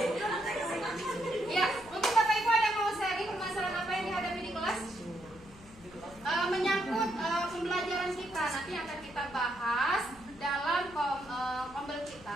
Ya, mungkin Bapak Ibu ada yang mau sharing permasalahan apa yang dihadapi di kelas? Menyangkut pembelajaran kita nanti akan kita bahas dalam kombel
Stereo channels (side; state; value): left; noise; hum, 21 dB below the sound